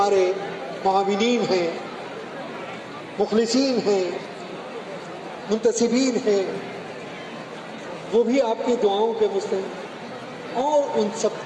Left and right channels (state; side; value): identical; both; correlation 1.00